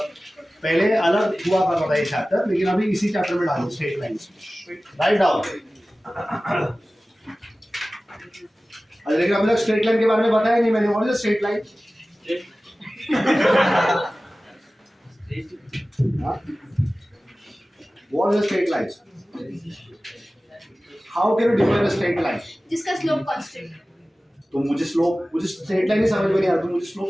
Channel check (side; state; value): both; normal; correlation 0.97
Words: पहले अलग हुआ करता था ये चैप्टर, लेकिन अभी इसी चैप्टर में डालो स्ट्रेट लाइंस। Write down. लेकिन अभी तक स्ट्रेट लाइन के बारे में बताया नहीं मैंने। What is straight line? What is a straight line? How can you define a straight line? जिसका स्लोप कांस्टेंट। तो मुझे स्ट्रेट लाइन ही समझ में नहीं आ रहा। तुम मुझे स्लोप